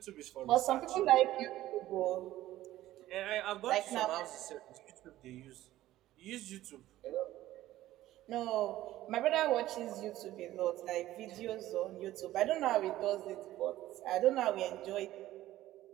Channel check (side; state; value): left; quieter; 14.8 dB